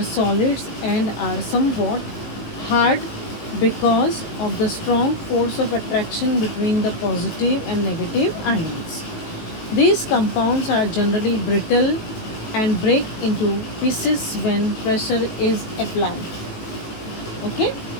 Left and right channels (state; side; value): late; right; 19 ms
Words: solids and are somewhat hard because of the strong force of attraction between the positive and negative ions. These compounds are generally brittle and break into pieces when pressure is applied. Okay,